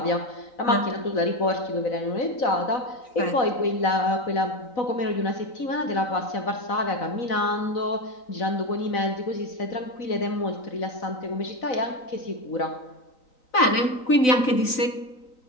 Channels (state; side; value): late; right; 3.9 ms